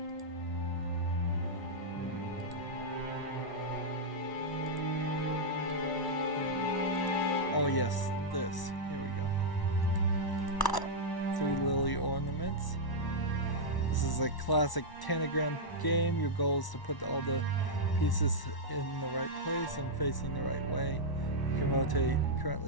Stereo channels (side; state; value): right; late; 1.1 ms